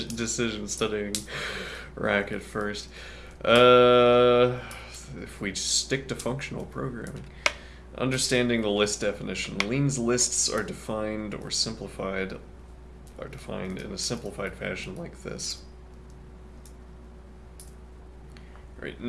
studying Rack at first. If we stick to functional programming. Understanding the list definition. Lean's lists are defined or simplified, are defined in a simplified fashion like this. Right,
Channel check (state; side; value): identical; both; correlation 1.00